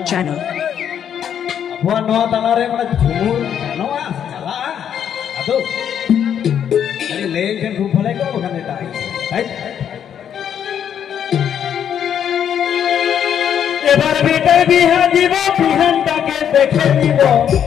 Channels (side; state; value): right; quieter; 9.0 dB